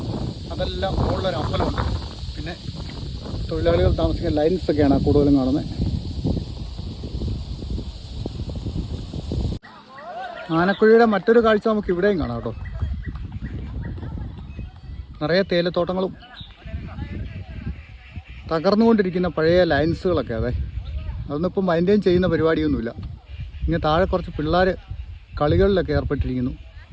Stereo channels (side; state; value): both; identical; correlation 1.00